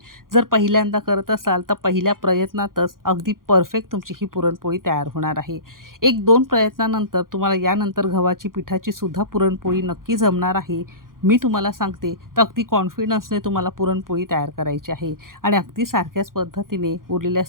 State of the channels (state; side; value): late; left; 0.91 ms